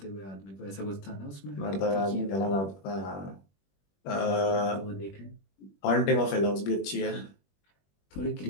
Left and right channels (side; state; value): right; late; 21 ms